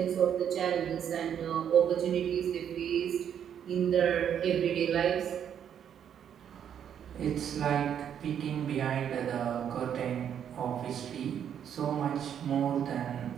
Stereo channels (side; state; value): left; quieter; 8.9 dB